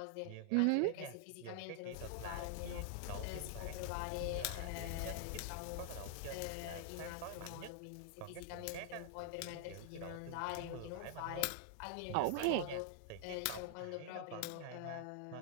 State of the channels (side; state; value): both; different; correlation 0.00